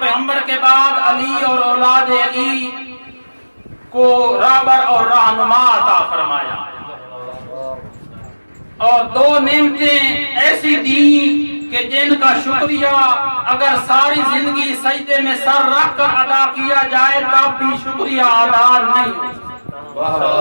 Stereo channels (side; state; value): both; inverted; correlation -1.00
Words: پیغمبر کے بعد علی اور اولاد علی کو رہبر اور رہنما عطا فرمایا اور دو نعمتیں ایسی دی کہ جن کا شکریہ اگر ساری زندگی سجدے میں سر رکھ کر ادا کیا جائے تب بھی شکریہ ادا نہیں ہو.